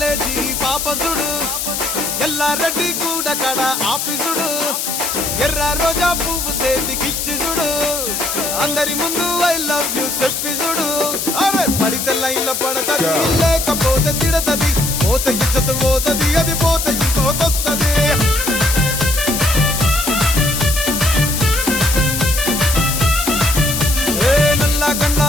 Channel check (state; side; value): noise; left; hiss, 2 dB below the sound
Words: పాపసుడు ఎల్లారెడ్డి కూడ కడ ఆఫీసుడు ఎర్ర రోజా పువ్వు సేతికిచ్చి చూడు అందరి ముందు ఐ లవ్ యూ చెప్పి చూడు అరే పడితే లైన్లో పడతది లేకపోతే తిడతది పోతే ఇచ్చత పోతది అది పోతే ఇంకోతొస్తది నల్ల గండ్ల